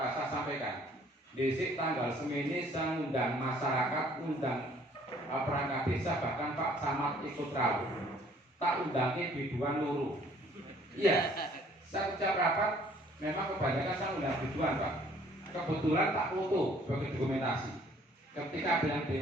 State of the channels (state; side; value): normal; both; correlation 0.58